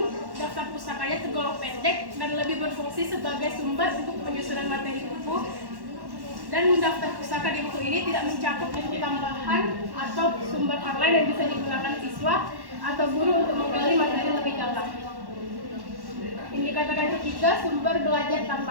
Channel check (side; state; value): left; late; 1.1 ms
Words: daftar pustakanya tergolong pendek dan lebih berfungsi sebagai sumber untuk penyusunan materi buku. Dan daftar pustaka di buku ini tidak mencakup buku tambahan atau sumber online yang bisa digunakan siswa atau guru untuk menggali materi lebih dalam. Indikator yang ketiga, sumber belajar